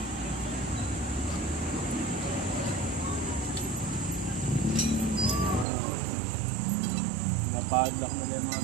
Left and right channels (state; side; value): drops out; left; at 5.7 s